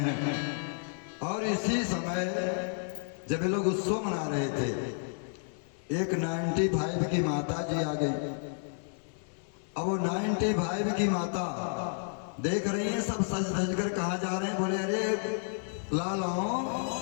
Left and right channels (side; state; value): right; silent; 57 dB below the other